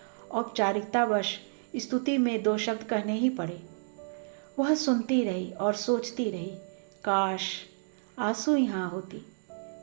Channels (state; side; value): silent; left; digital silence